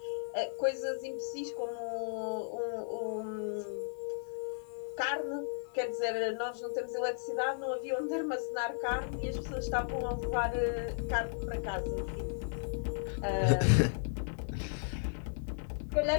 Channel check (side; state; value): right; silent; digital silence